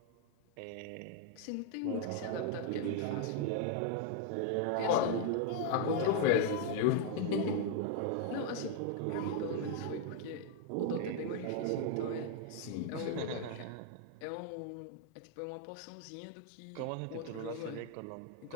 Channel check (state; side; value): different; both; correlation 0.00